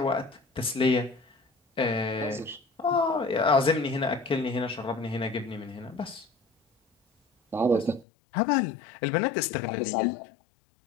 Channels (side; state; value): right; drops out; at 8.1 s